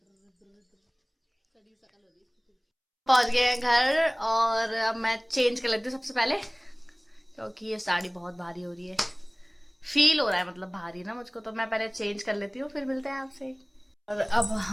पहुंच गए हैं घर और अब मैं चेंज कर लेती हूँ सबसे पहले, क्योंकि ये साड़ी बहुत भारी हो रही है। फील हो रहा है मतलब भारी ना मुझको, तो मैं पहले चेंज कर लेती हूँ, फिर मिलते हैं आपसे। और अब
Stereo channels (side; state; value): both; identical; correlation 1.00